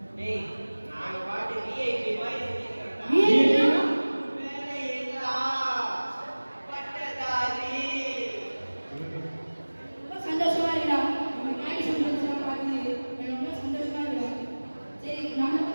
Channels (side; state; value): both; inverted; correlation -1.00